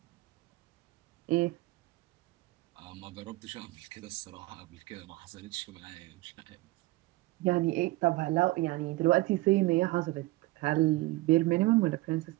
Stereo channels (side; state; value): left; quieter; 19.8 dB